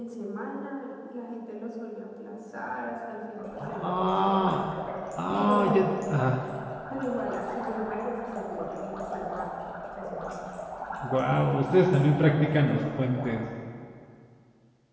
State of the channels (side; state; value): both; identical; correlation 1.00